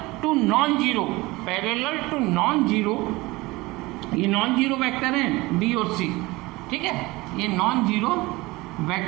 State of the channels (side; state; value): left; quieter; 21.6 dB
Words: to non zero, parallel to non zero, ये नॉन जीरो वेक्टर है बी और सी। ठीक है, ये नॉन जीरो